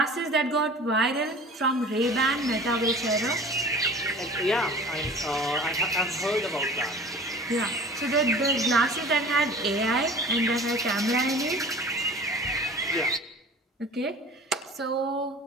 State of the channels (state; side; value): normal; both; correlation 0.42